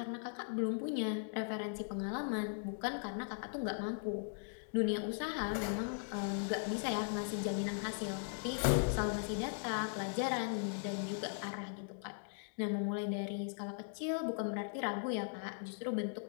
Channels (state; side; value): silent; right; digital silence